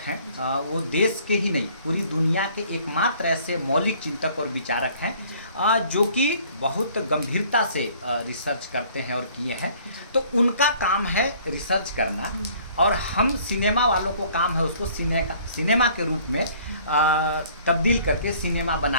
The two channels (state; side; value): inverted; both; correlation -0.56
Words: हैं। वो देश के ही नहीं, पूरी दुनिया के एकमात्र ऐसे मौलिक चिंतक और विचारक हैं जो कि बहुत गंभीरता से रिसर्च करते हैं और किए हैं। तो उनका काम है रिसर्च करना, और हम सिनेमा वालों को काम है उसको सिनेमा के रूप में तब्दील करके सिनेमा